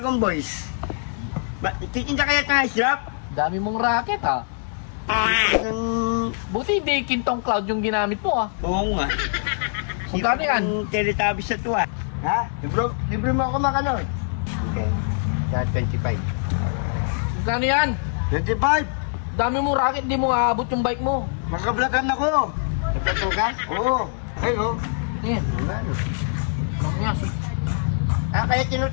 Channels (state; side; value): silent; right; digital silence